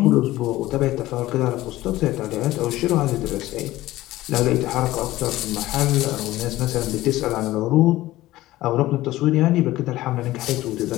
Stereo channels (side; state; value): right; quieter; 16.6 dB